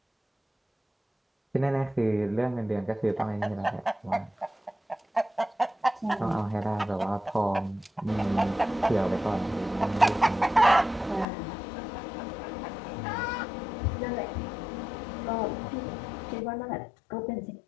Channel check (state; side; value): drops out; right; at 11.2 s